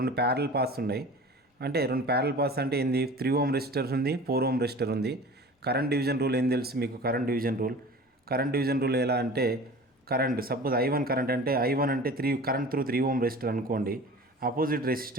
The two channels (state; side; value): normal; both; correlation 0.40